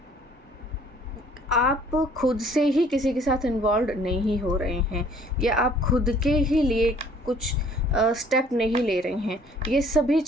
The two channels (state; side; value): normal; both; correlation 0.57